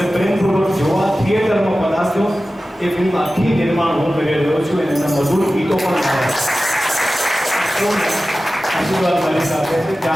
પ્રેમપૂર્વક જોવા થિયેટરમાં પધારજો. એ ફિલ્મ આખી નિર્માણ હું કરી રહ્યો છું અને એના મધુર ગીતો પણ આવે. આશીર્વાદ મારી સાથે છે.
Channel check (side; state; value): both; normal; correlation 0.95